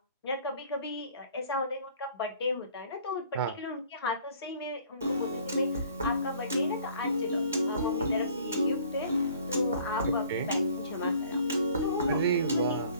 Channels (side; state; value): both; inverted; correlation -0.54